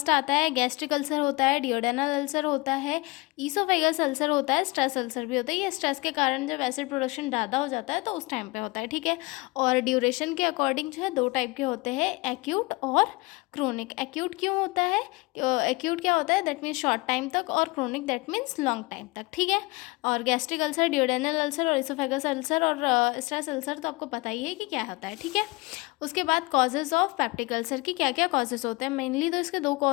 आता है गैस्ट्रिक अल्सर होता है, डियोडेनल अल्सर होता है, ईसोफेगस अल्सर होता है, स्ट्रेस अल्सर भी होता है। ये स्ट्रेस के कारण जब एसिड प्रोडक्शन ज़्यादा हो जाता है तो उस टाइम पे होता है। ठीक है, और ड्यूरेशन के अकॉर्डिंग जो है दो टाइप के होते हैं, एक्यूट और क्रोनिक। एक्यूट क्यों होता है? एक्यूट क्या होता है? दैट मीन्स शॉर्ट टाइम तक, और chronic that means long time तक। ठीक है, और गैस्ट्रिक अल्सर, डियोडेनल अल्सर और ईसोफेगस अल्सर और स्ट्रेस अल्सर तो आपको पता ही है कि क्या होता है। ठीक है, उसके बाद कॉजेज़ ऑफ पेप्टिक अल्सर की क्या क्या कॉजेज़ होते हैं? मेनली तो इसके दो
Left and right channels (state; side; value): quieter; right; 24.4 dB